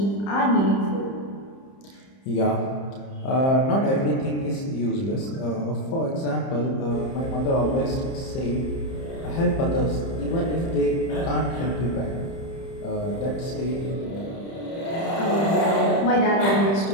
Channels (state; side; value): late; right; 30 ms